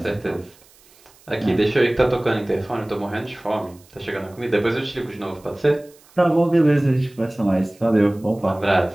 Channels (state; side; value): noise; right; hiss, 28 dB below the sound